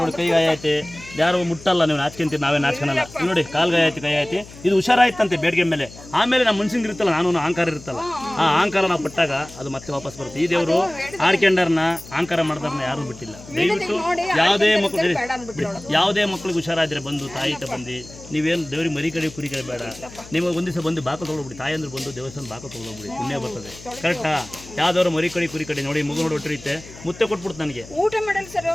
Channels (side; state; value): left; noise; hum, 18 dB below the sound